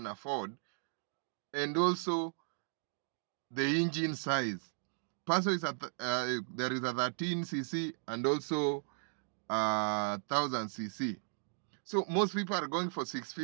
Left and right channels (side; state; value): left; silent; digital silence